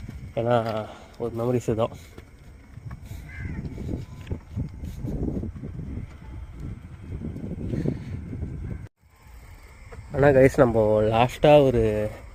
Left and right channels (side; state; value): both; identical; correlation 1.00